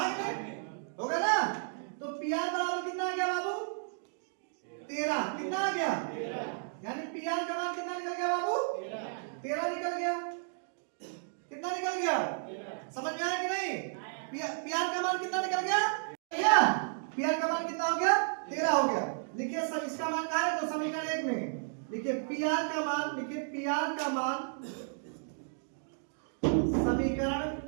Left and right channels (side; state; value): left; silent; digital silence